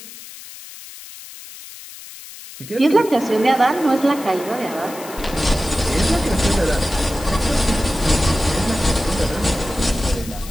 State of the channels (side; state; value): left; noise; hiss, 15 dB below the sound